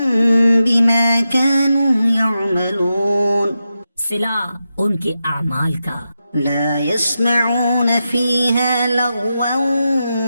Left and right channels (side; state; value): both; inverted; correlation -0.89